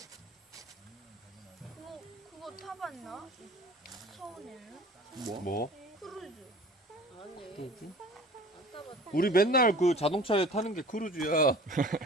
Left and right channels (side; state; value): both; normal; correlation 0.44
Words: 그거 타봤나? 서울에는 뭐? 뭐? 크루즈. 아니. 안 타봤어. 우리 맨날 그 자동차에 타는 게 크루즈야.